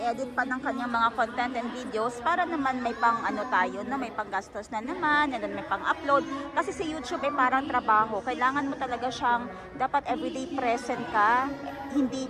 pa ng kanyang mga content and videos para naman may pang tayo, na may pang-gastos na naman, and then may pang-upload. Kasi sa YouTube ay parang trabaho. Kailangan mo talaga siyang, dapat everyday present ka, hindi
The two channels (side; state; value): both; identical; correlation 1.00